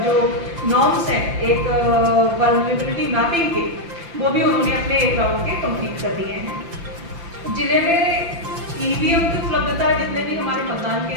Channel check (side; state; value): left; late; 5.8 ms